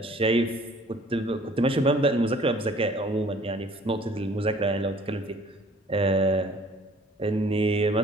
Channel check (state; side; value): normal; both; correlation 0.54